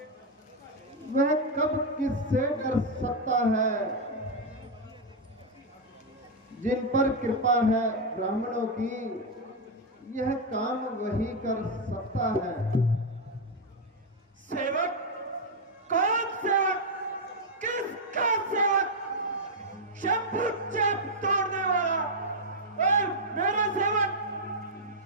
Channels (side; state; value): both; normal; correlation 0.00